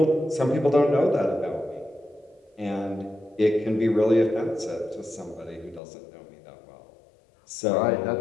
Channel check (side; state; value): right; drops out; at 5.8 s